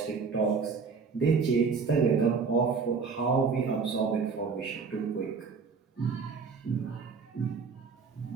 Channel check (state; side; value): quieter; left; 5.2 dB